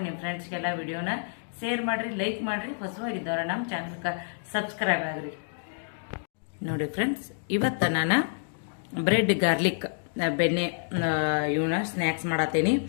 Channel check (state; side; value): silent; right; digital silence